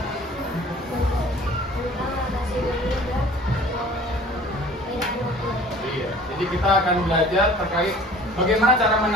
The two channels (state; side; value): normal; both; correlation 0.48